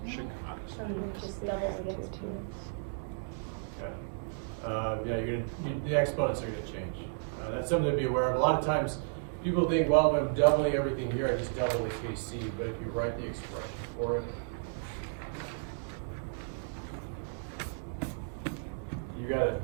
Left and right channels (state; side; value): silent; left; digital silence